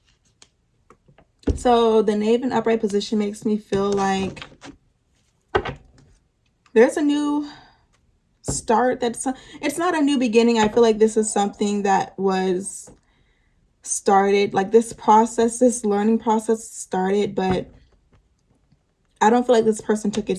So the Knave in upright position makes me feel like there's a new start. It's not a new beginning. I feel like this is something that was started, like this process, this learning process started, but I don't feel like this person took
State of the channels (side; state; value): both; identical; correlation 1.00